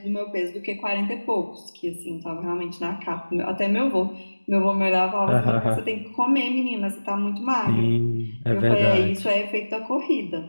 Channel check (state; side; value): inverted; both; correlation -1.00